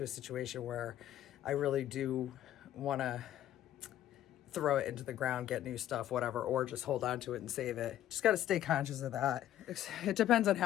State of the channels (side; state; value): right; quieter; 12.3 dB